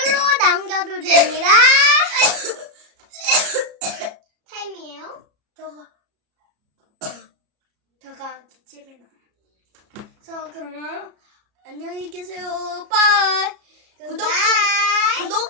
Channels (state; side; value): late; left; 33 ms